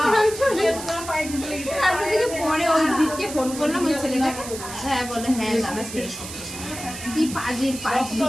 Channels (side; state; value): right; noise; hiss, 10 dB below the sound